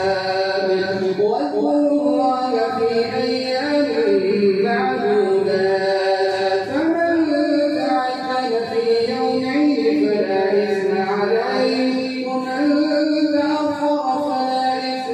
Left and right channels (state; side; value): identical; both; correlation 1.00